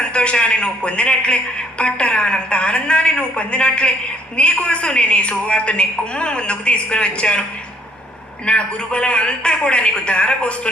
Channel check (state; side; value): normal; both; correlation 0.64